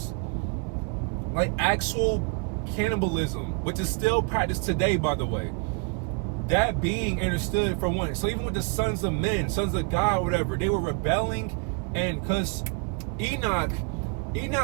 like actual cannibalism, which is still practiced today, by the way, that being understood for one. So even with the sons of men, sons of God, whatever, they were rebelling. And because Enoch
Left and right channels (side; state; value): left; quieter; 36.1 dB